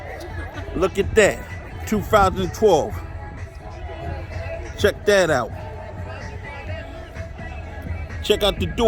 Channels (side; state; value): both; identical; correlation 1.00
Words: Look at that. 2012. Check that out. Check out the